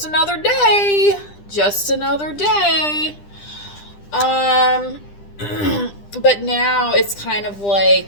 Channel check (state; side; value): late; right; 10 ms